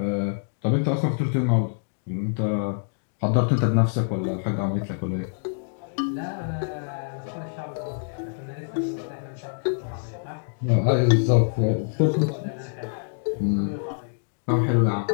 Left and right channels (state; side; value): silent; right; digital silence